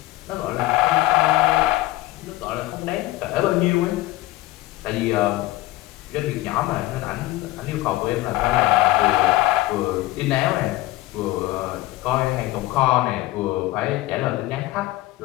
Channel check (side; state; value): right; quieter; 17.5 dB